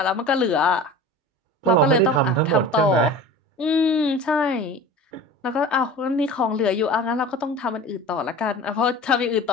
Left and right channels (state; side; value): normal; both; correlation 0.37